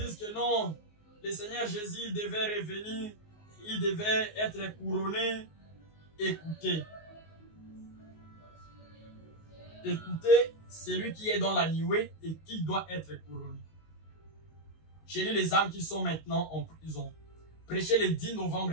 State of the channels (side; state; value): right; late; 19 ms